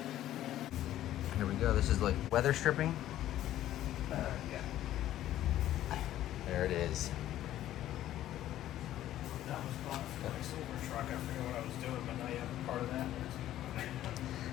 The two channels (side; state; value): right; quieter; 13.0 dB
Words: Here we go. This is like weather stripping. Yeah. There it is. That was fun for my silver truck. I forget what I was doing, but now you have a part of that.